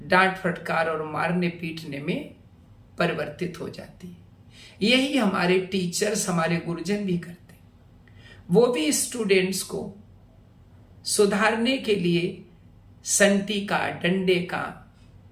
डांट फटकार और मारने पीटने में परिवर्तित हो जाती है। यही हमारे टीचर्स, हमारे गुरुजन भी करते हैं। वो भी स्टूडेंट्स को सुधारने के लिए संटी का, डंडे का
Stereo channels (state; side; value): identical; both; correlation 1.00